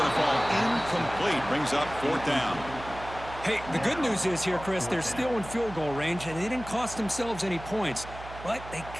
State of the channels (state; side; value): noise; right; hum, 14 dB below the sound